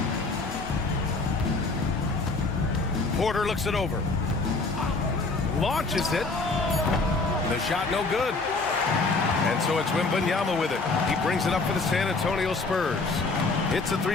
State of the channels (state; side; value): quieter; right; 3.7 dB